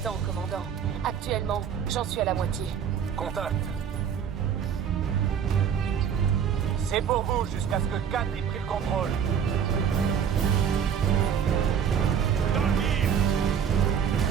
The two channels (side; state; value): left; quieter; 7.9 dB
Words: temps, commandant. Actuellement, j'en suis à la moitié. Contact. C'est pour vous jusqu'à ce que 4 ait pris le contrôle. Dans le mire.